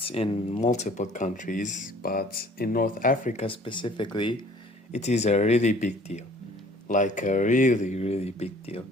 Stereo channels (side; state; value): both; normal; correlation 0.53